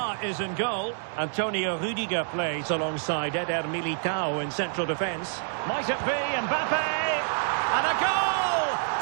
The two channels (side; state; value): left; silent; digital silence